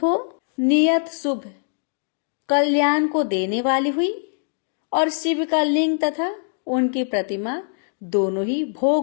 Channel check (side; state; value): right; silent; 64 dB below the other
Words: हो नियत शुभ कल्याण को देने वाली हुई और शिव का लिंग तथा उनकी प्रतिमा दोनों ही